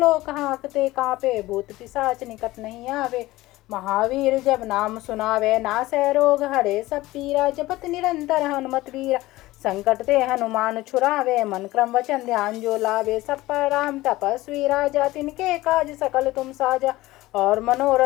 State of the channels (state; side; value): quieter; right; 18.2 dB